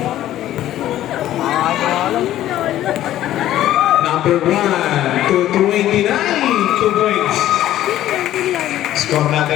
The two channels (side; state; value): right; quieter; 13.2 dB